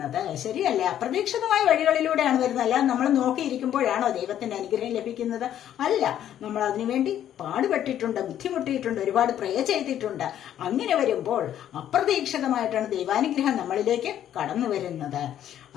ശരിയല്ലേ? അപ്രതീക്ഷിതമായ വഴികളിലൂടെയാണ് വരുന്നത്. അല്ലാതെ നമ്മൾ നോക്കിയിരിക്കുമ്പോഴാണോ ദൈവത്തിന്റെ അനുഗ്രഹം ലഭിക്കുന്നത്? അല്ല. നമ്മൾ അതിനുവേണ്ടി പാടുപെട്ടിട്ടുണ്ട്, ബുദ്ധിമുട്ടിയിട്ടുണ്ട്, ഒരുപാട് പ്രേ ചെയ്തിട്ടുണ്ട്. അങ്ങനെ വരുമ്പോൾ അപ്രതീക്ഷിതമായിട്ടാണ് ദൈവാനുഗ്രഹം നമ്മളിലേക്ക് കടന്നു വരുന്നത്.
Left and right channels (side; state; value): right; quieter; 10.9 dB